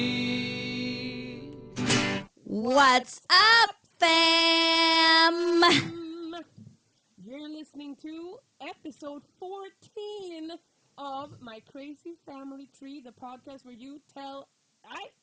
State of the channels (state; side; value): identical; both; correlation 1.00